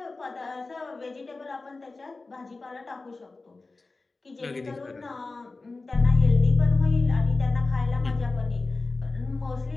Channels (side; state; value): right; quieter; 3.6 dB